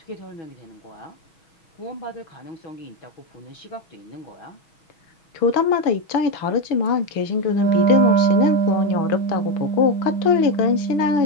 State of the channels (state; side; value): late; right; 6.2 ms